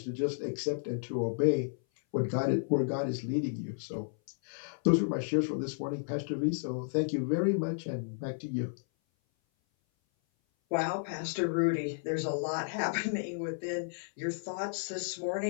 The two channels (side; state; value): right; silent; 56 dB below the other